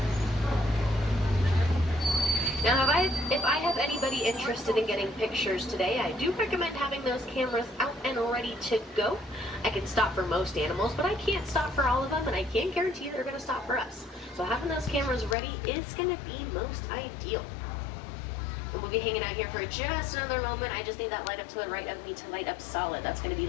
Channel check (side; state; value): right; drops out; at 15.4 s